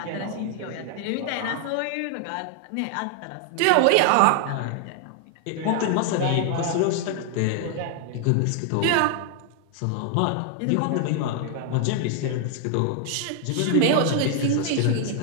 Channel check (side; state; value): both; different; correlation 0.00